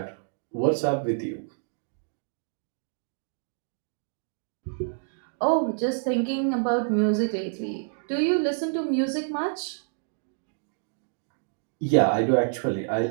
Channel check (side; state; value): left; silent; digital silence